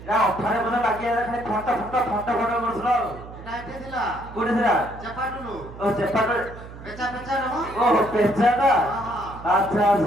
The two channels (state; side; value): noise; right; hum, 15 dB below the sound